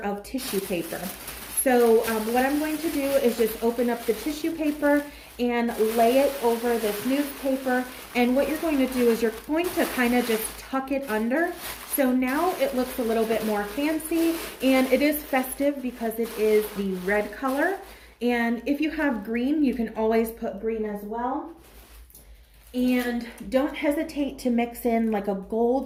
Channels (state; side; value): identical; both; correlation 1.00